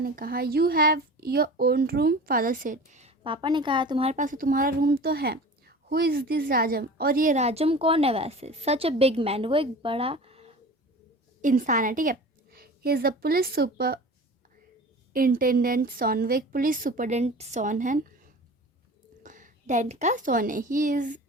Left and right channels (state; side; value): normal; both; correlation 0.38